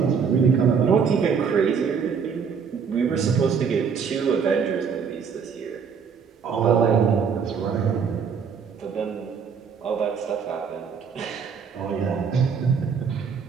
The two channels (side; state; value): left; quieter; 6.4 dB